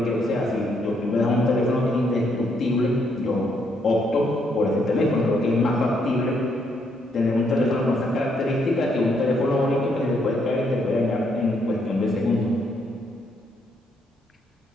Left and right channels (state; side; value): normal; both; correlation 0.74